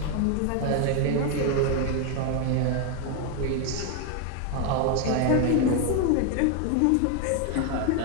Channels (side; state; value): both; different; correlation 0.01